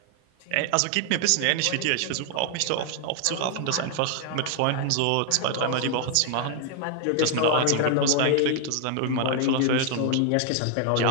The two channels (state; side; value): different; both; correlation 0.00